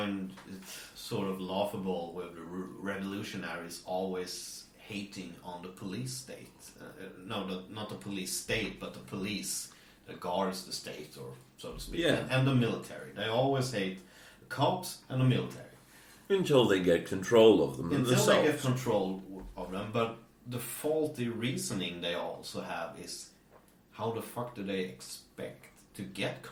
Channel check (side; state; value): both; identical; correlation 1.00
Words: it sort of laughable with the revolutionaries always hating on the police state. Not the police state, but the police that guards the state, or so to speak. Yeah. And the military. They always hate the cops and the military. Until they get control of them Until themselves. they get control of them. But the faulty reasoning they also have is, how the fuck do they expect to get